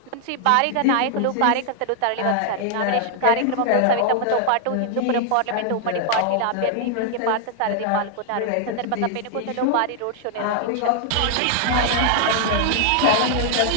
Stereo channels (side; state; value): both; different; correlation 0.00